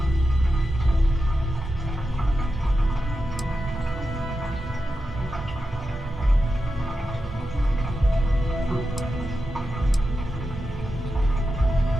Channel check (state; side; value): normal; both; correlation 0.89